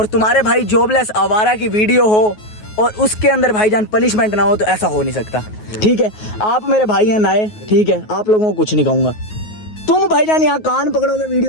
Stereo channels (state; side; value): late; right; 9.4 ms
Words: तुम्हारे भाई जॉबलेस आवारा की वीडियो हो और उसके अंदर भाईजान पनिशमेंट ना हो तो ऐसा हो नहीं सकता। ठीक है आप मेरे भाई हैं नए, ठीक है आप लोगों को कुछ नहीं कहूंगा। तुम भाईजान यहाँ कान पकड़ोगे